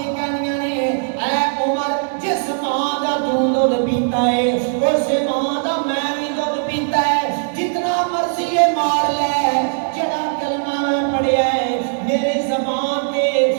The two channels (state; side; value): silent; left; digital silence